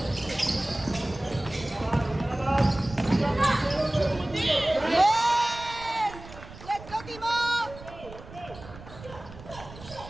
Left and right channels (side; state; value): right; noise; rumble, 16 dB below the sound